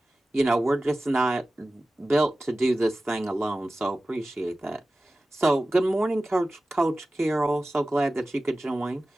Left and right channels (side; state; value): both; normal; correlation 0.96